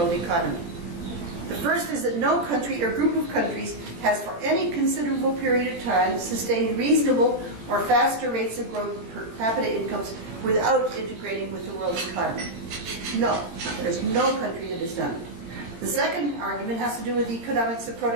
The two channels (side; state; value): left; late; 18 ms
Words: economy. The first is that no country or group of countries has for any considerable period of time sustained reasonable or faster rates of growth per capita incomes without integrating with the world economy. No, there's no country that has done it. The second argument has to do with the economics of